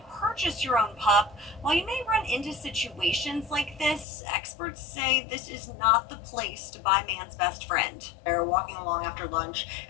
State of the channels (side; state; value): right; drops out; at 4.0 s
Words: purchase your own pup, while you may run into situations like this, experts say this is not the place to buy man's best friend. They're walking along after lunch